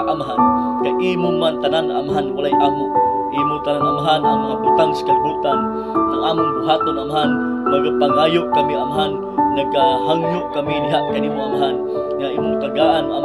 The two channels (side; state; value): both; identical; correlation 1.00